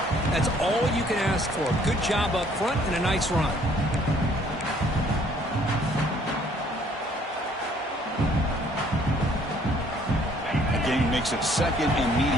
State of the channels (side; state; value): both; normal; correlation 0.61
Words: That's all you can ask for. Good job up front and a nice run. The game makes it second and